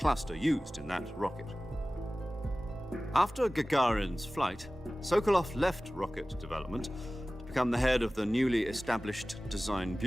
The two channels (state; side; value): normal; both; correlation 0.97